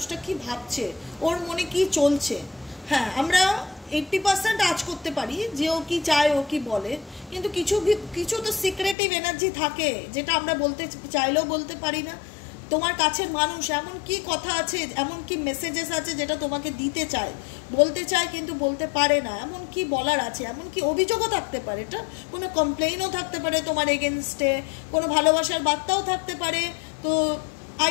কি ভাবছে, ওর মনে কি চলছে। হ্যাঁ, আমরা 80% আজ করতে পারি যে ও কি চায়, ও কি বলে, কিন্তু কিছু কিছু তো সিক্রেটিভ এনার্জি থাকে যেটা আমরা বলতে চাইলেও বলতে পারি না। তোমার কাছের মানুষ এমন কি কথা আছে, এমন কি মেসেজেস আছে যেটা তোমাকে দিতে চায়, বলতে চায় কিন্তু বলতে পারে না। এমন কি বলার আছে, এমন কি অভিযোগও থাকতে পারে, এটা কোনো কমপ্লেইনও থাকতে পারে তোমার এগেনস্টে, কোনো ভালোবাসার বার্তাও থাকতে পারে। তো আই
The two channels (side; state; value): right; drops out; at 9.0 s